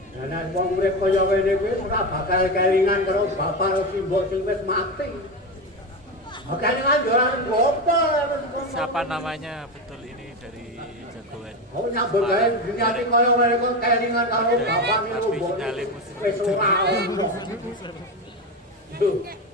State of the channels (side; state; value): both; normal; correlation 0.18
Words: Lah nek wong urip kaya ngene kuwi ora bakal kelingan karo bapak karo simbok sing wis mati. Kelingan yo ora ngopo. Siapa namanya betul ini dari jagoan? Oh nyambut gawe dunyane kaya ngene kok kelingan karo bapak niku wis ora ono. Duh.